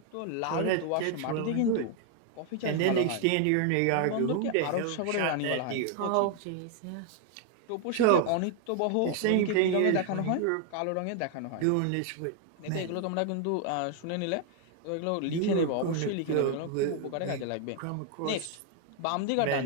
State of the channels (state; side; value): different; both; correlation 0.00